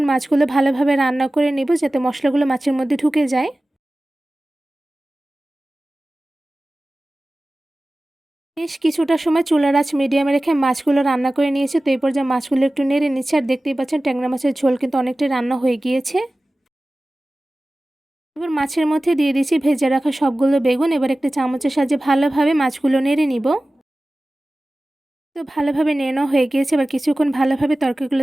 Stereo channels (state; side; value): normal; both; correlation 0.97